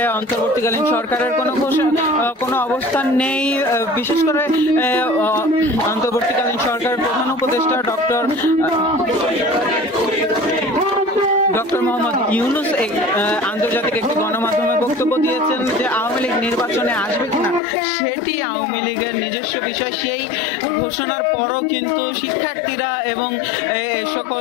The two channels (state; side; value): drops out; right; at 17.6 s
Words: অন্তর্বর্তীকালীন সরকারের কোনো অবস্থান নেই। বিশেষ করে অন্তর্বর্তীকালীন সরকারের প্রধান উপদেষ্টা ডক্টর মোহাম্মদ ইউনূস আন্তর্জাতিক একটি গণমাধ্যমে বক্তব্য দিয়েছেন যে আওয়ামী লীগ নির্বাচনে আসবে কিনা সেটি আওয়ামী লীগের নিজস্ব বিষয়। সেই ঘোষণার পরও কিন্তু শিক্ষার্থীরা এবং